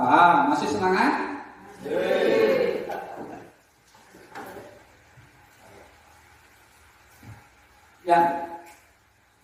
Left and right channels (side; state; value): both; identical; correlation 1.00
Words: Masih semangat? Ya,